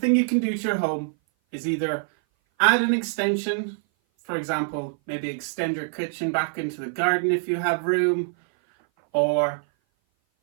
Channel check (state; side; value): silent; left; 58 dB below the other